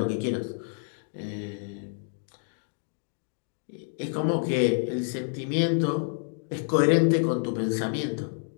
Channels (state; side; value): silent; right; digital silence